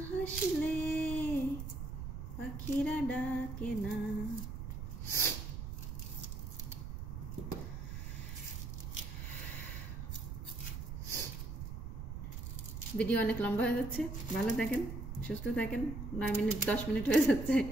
হাসলে পাখিরা ডাকে না। ভিডিও অনেক লম্বা হয়ে যাচ্ছে, ভালো থাকেন, সুস্থ থাকেন। 9 মিনিট 10 মিনিট হয়ে যাচ্ছে,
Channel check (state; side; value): noise; right; rumble, 6 dB below the sound